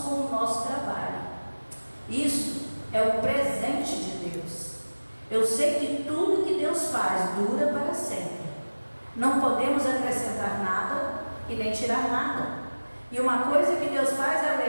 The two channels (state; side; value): inverted; both; correlation -1.00